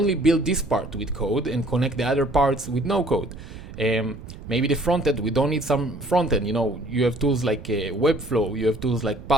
build this part with code and connect the other parts with no code. Maybe the front end, we don't need some front end. You have tools like Webflow, you have tools like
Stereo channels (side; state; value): right; noise; rumble, 14 dB below the sound